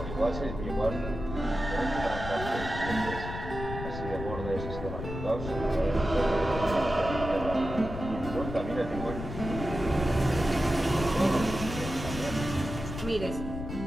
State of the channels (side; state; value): left; noise; rumble, 7 dB below the sound